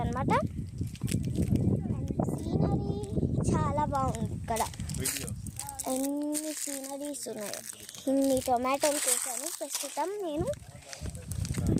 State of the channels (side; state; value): both; identical; correlation 1.00